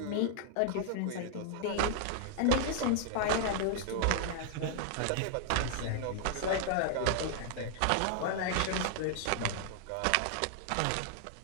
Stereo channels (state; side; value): different; both; correlation 0.00